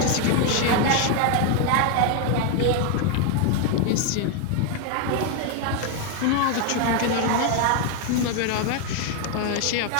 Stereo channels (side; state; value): both; different; correlation 0.01